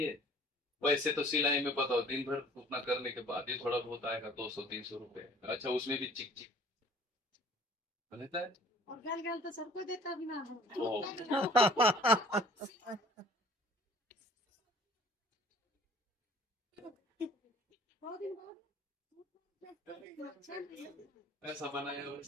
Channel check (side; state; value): both; normal; correlation 0.52